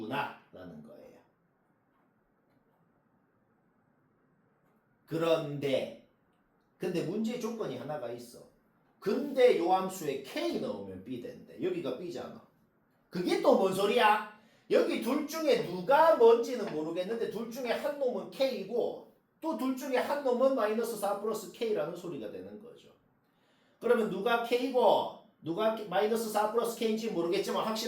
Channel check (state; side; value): identical; both; correlation 1.00